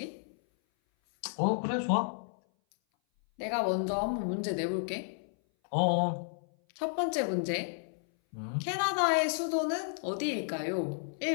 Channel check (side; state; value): right; silent; 56 dB below the other